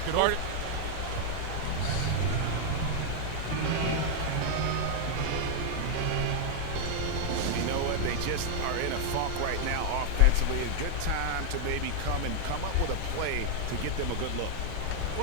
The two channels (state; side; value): different; both; correlation -0.01